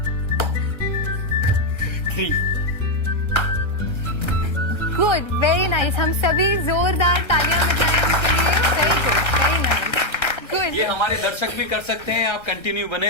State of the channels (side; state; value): right; late; 1.3 ms